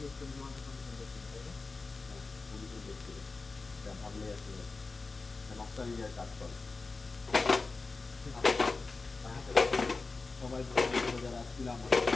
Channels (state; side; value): quieter; right; 3.9 dB